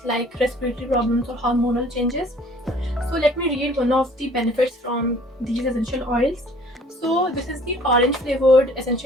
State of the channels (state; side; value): normal; both; correlation 0.54